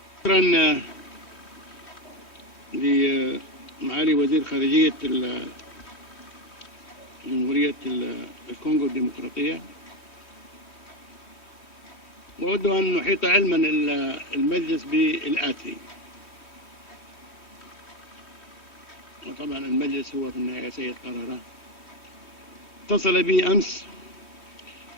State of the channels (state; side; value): late; right; 3.1 ms